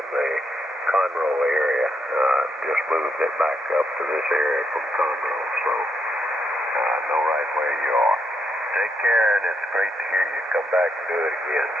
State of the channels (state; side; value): normal; both; correlation 0.79